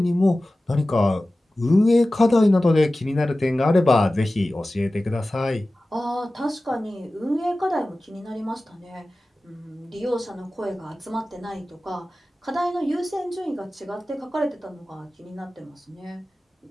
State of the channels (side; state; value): both; normal; correlation 0.96